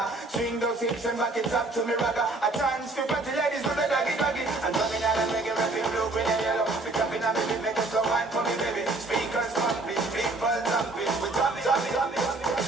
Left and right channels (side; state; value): left; quieter; 3.1 dB